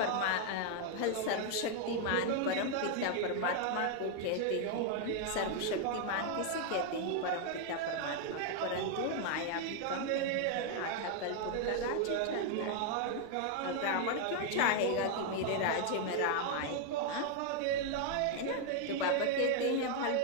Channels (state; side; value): different; both; correlation 0.00